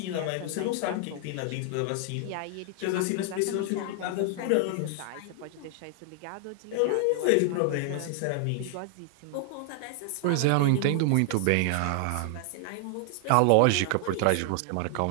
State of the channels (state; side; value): different; both; correlation 0.00